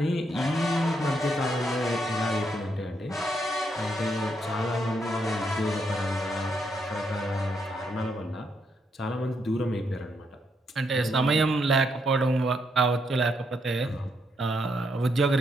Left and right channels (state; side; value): normal; both; correlation 0.77